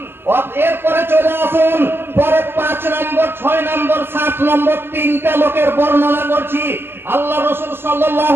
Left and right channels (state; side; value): late; left; 0.11 ms